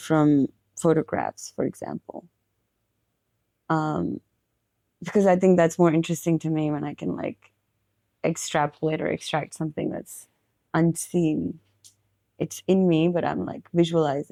from photographs, for example. Um, because I think that's more interesting to me when I can like extrapolate or extract something that's unseen. It's in me, but I'm like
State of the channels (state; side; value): identical; both; correlation 1.00